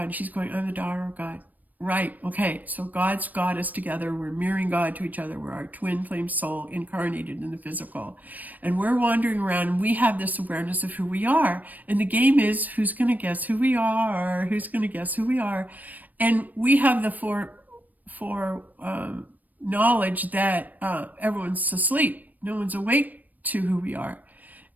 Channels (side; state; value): left; late; 0.082 ms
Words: And she's going, I'm the daughter of God. Right, okay, so God's got us together. We're mirroring God to each other. We're our twin flame soul incarnated in the physical. And we're wandering around, and we have this awareness of who we are. And the game is, who's going to guess who we are? Who's going to guess who we are? And we have the knowledge that everyone's asleep. No one's awake to who we are.